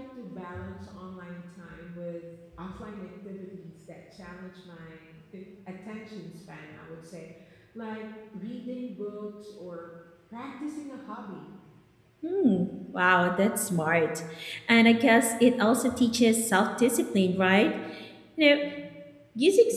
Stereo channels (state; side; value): identical; both; correlation 1.00